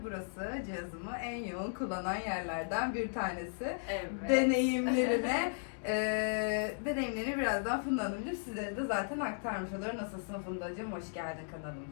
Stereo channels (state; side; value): silent; right; digital silence